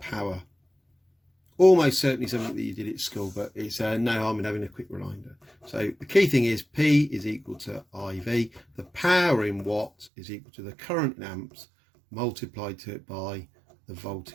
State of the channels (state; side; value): drops out; left; at 10.1 s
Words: Almost certainly something that you did at school, but it's no harm in having a quick reminder. So the key thing is P is equal to IV. The power in watts is equal to the current in amps multiplied to it by the